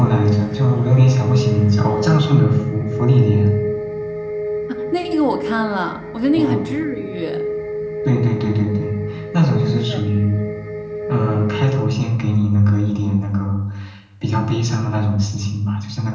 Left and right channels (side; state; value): both; identical; correlation 1.00